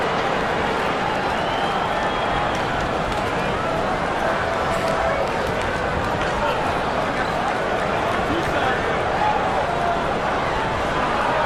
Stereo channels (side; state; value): both; identical; correlation 1.00